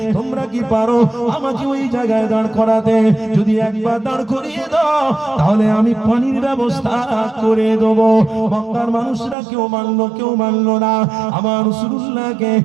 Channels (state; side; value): drops out; left; at 9.3 s